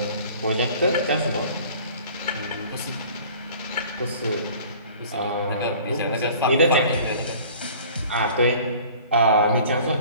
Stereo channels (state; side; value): inverted; both; correlation -0.47